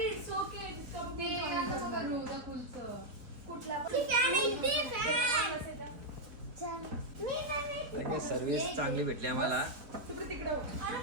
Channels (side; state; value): left; late; 3.9 ms